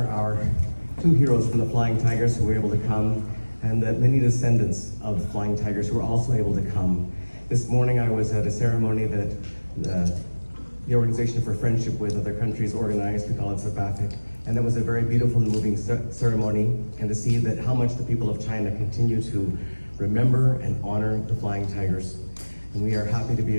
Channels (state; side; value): inverted; both; correlation -1.00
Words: our two heroes from the Flying Tigers who were able to come, and the many descendants of the Flying Tigers who were also able to come. This morning I was at a ceremony that the Organization for Friendship with Other Countries organized. We call it SAPAFIC, and it was a very beautiful and moving ceremony, and to see that how much the people of China continue to remember and honor the Flying Tigers. And we are happy to be